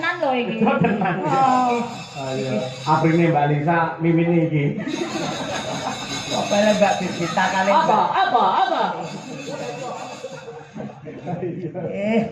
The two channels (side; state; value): both; identical; correlation 1.00